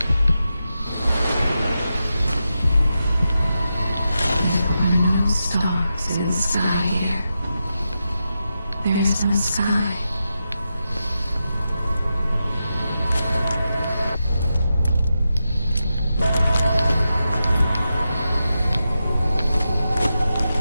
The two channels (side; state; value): both; inverted; correlation -0.89